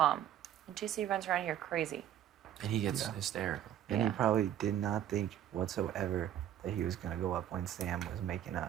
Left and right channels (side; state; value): left; quieter; 10.9 dB